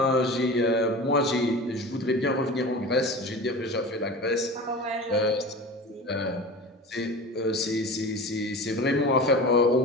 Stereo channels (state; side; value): normal; both; correlation 0.34